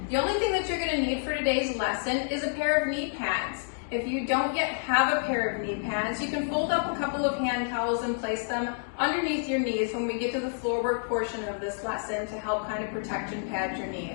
The only thing that you're going to need for today's lesson is a pair of knee pads. If you don't yet have a pair of knee pads, you can fold up a couple of hand towels and place them underneath your knees when we get to the floor work portion of this lesson to help kind of protect and pad your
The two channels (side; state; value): right; silent; digital silence